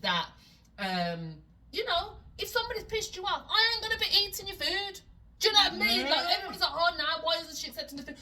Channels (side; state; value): both; identical; correlation 1.00